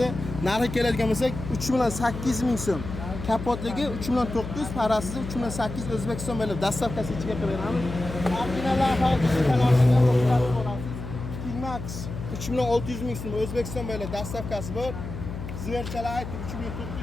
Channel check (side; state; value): left; noise; hum, 8 dB below the sound